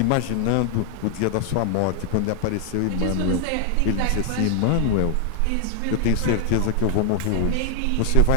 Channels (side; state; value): both; different; correlation 0.00